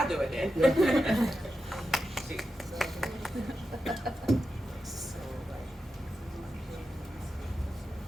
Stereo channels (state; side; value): normal; both; correlation 0.89